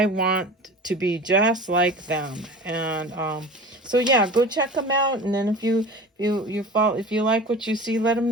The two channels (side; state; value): both; normal; correlation 0.36